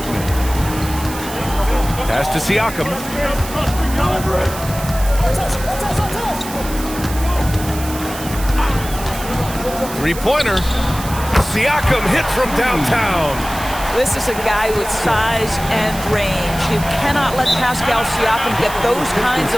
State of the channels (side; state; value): right; noise; hiss, 12 dB below the sound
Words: Pass to Siakam. Three-pointer. Siakam hit from downtown. This is a guy with size and range. You cannot let Pascal Siakam get those kinds